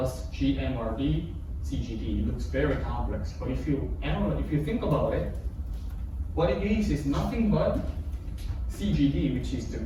GMRD CGD. It looks very complex, but if you think about it, what it means is nothing but CGD, which is the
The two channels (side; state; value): both; identical; correlation 1.00